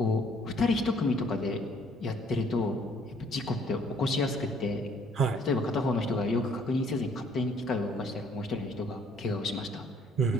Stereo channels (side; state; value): both; normal; correlation 0.62